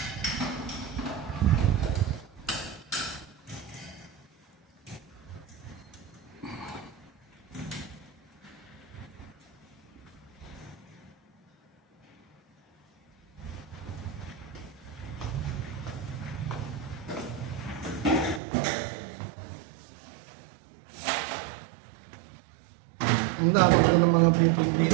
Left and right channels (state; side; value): drops out; left; at 18.4 s